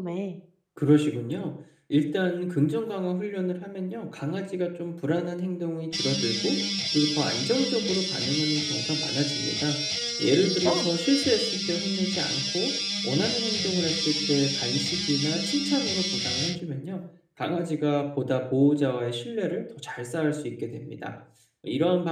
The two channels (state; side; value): identical; both; correlation 1.00